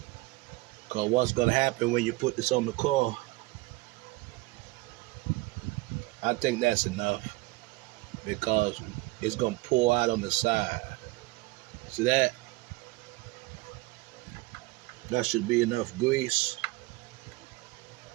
Cause what's gonna happen when you put this on the car, I think that's enough. Because it's gonna pour out on the side. See that? That should be enough grease.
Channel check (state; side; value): quieter; left; 21.7 dB